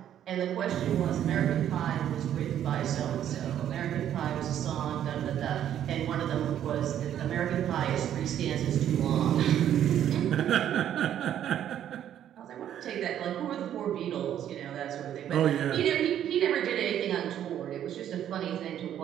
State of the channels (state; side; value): quieter; left; 10.5 dB